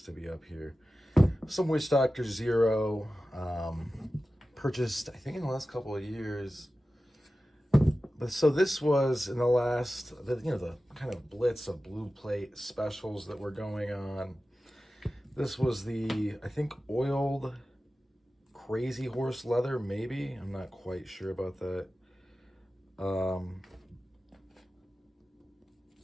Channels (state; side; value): normal; both; correlation 0.95